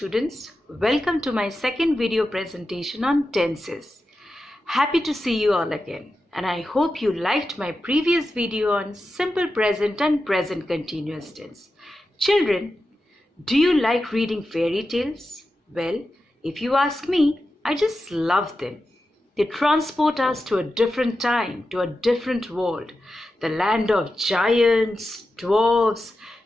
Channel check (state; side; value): normal; both; correlation 0.91